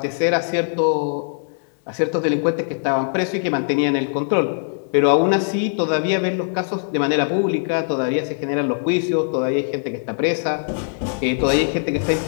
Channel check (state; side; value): silent; right; digital silence